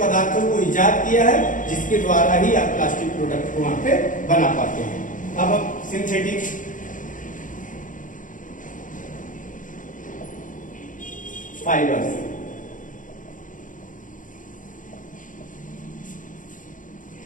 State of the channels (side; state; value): right; late; 0.38 ms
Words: को इजाद किया है जिसके द्वारा ही आप प्लास्टिक प्रोडक्ट को वहां पे बना पाते हैं। अब हम synthetic fibres,